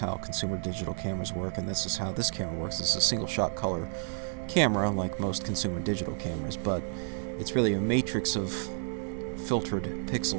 consumer digital cameras work, and this is how this camera works. This is a single shot color camera like most consumer digital cameras, but it's really a matrix of filtered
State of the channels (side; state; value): left; silent; digital silence